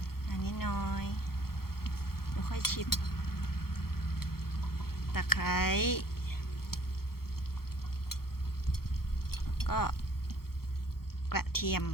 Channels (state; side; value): late; right; 0.94 ms